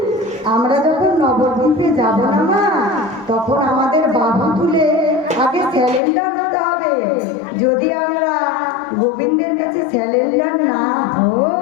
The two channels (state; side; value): drops out; right; at 6.0 s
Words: আমরা যখন নবদ্বীপে যাব না মা, তখন আমাদের বাহু তুলে আগে স্যালেন্ডার হতে হবে। যদি আমরা গোবিন্দের কাছে স্যালেন্ডার না